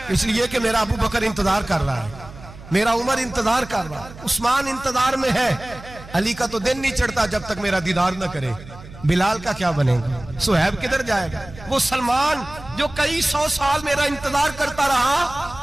इसलिए कि मेरा अबू बकर इंतजार कर रहा है, मेरा उमर इंतजार कर रहा है, उस्मान इंतजार में है, अली का तो दिन नहीं चढ़ता जब तक मेरा दीदार न करे, बिलाल का क्या बनेगा, सुहैब किधर जाएगा, वो सलमान जो कई 100 साल मेरा इंतजार करता रहा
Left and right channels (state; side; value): noise; right; hum, 17 dB below the sound